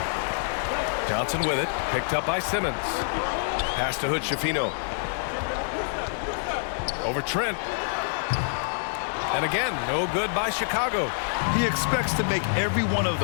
Johnson with it. Picked up by Simmons. Pass to Hood-Schifino. Over Trent. And again, no good by Chicago. He expects to make every one of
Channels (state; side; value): silent; right; digital silence